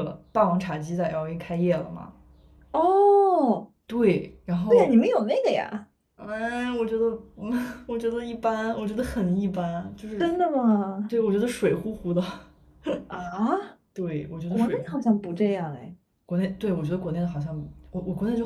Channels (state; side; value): identical; both; correlation 1.00